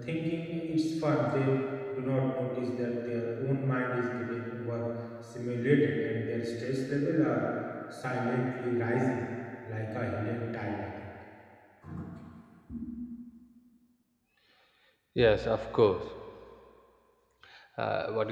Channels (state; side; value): identical; both; correlation 1.00